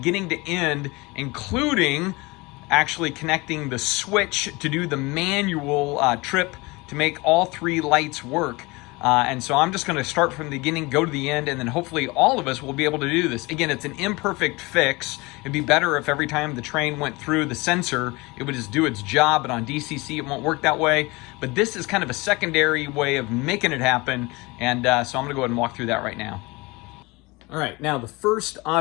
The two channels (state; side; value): quieter; right; 24.0 dB